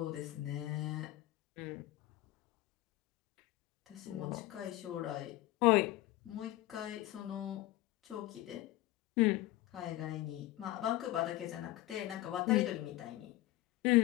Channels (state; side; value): quieter; right; 16.8 dB